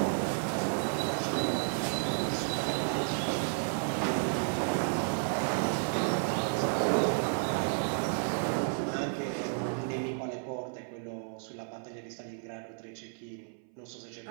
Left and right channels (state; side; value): silent; left; 56 dB below the other